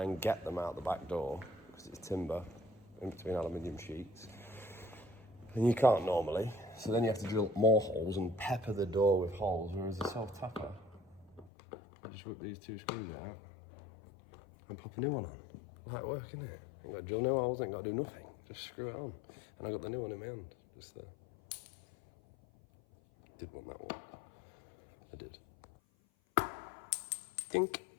and get them out the back door, because it's timber in between aluminium sheets. And you can't normally, so then you have to drill more holes and pepper the door with holes, whereas a self-tapper, I just rip these two screws out and pop a new one on. Light work, isn't it? Ain't got to drill new holes, ain't got to do nothing. Just screw it on. And I got the new one in my hand, just there. Did want that one. I did. Dink.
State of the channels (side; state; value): right; drops out; at 11.5 s